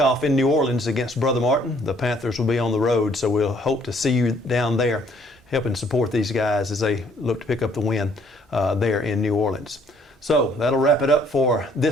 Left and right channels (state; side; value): normal; both; correlation 0.63